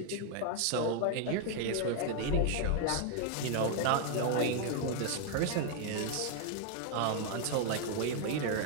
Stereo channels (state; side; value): different; both; correlation 0.00